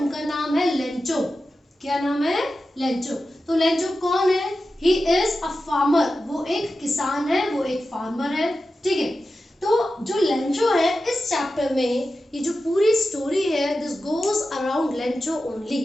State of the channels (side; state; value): both; normal; correlation 0.92